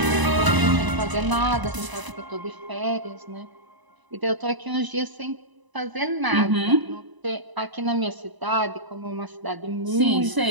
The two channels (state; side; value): late; left; 1.0 ms